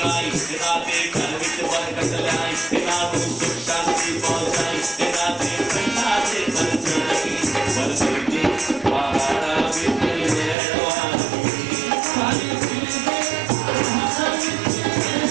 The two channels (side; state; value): left; drops out; at 10.6 s